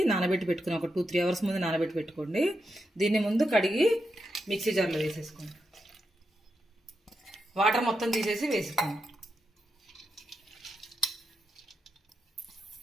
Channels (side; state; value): both; normal; correlation 0.85